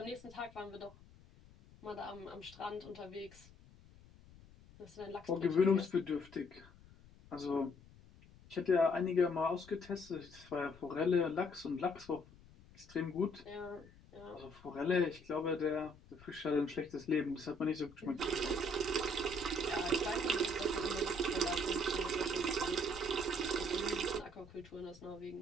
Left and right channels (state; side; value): noise; left; rumble, 22 dB below the sound